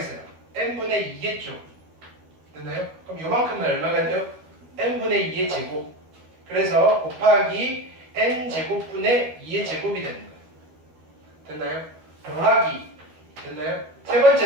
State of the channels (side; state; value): left; late; 12 ms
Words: n분의 2겠죠. 됐나요? 그럼 요만큼은 얼마가 돼요? n분의 2의 제곱. 그래서 곱하기 n제곱분의 2의 제곱이 되는 거예요. 됐나요? 더하기. 됐나요? 세